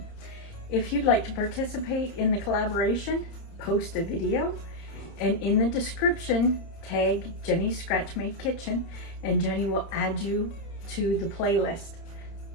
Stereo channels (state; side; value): late; right; 30 ms